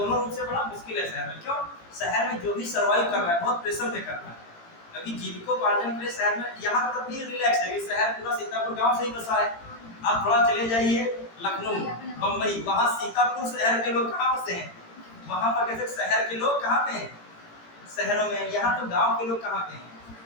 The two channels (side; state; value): right; late; 18 ms